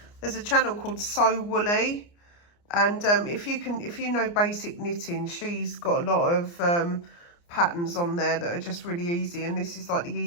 a channel called So Woolly. And if you know basic knitting, she's got a lot of patterns on there that are just really easy. And this is like the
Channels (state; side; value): late; right; 29 ms